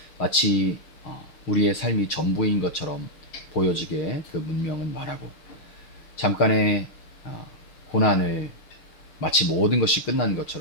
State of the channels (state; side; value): late; right; 6.5 ms